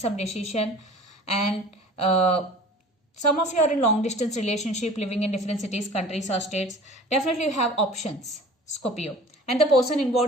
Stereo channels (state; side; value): normal; both; correlation 0.44